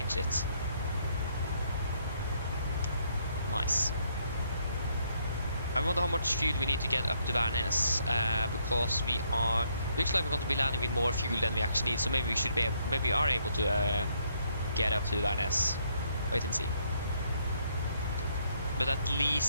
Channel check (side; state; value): both; inverted; correlation -0.71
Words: it. Nice. I wonder how much fuel we need to get up to Værnes, because looks like we're going to be landing with more fuel than we actually need, so maybe we are able to get up to Værnes. Wait and see. But at